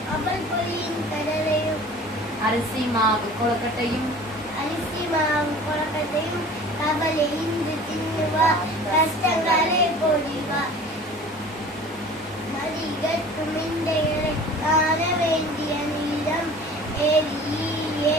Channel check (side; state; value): both; normal; correlation 0.44